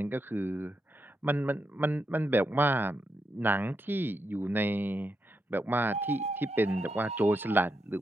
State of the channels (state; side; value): normal; both; correlation 0.83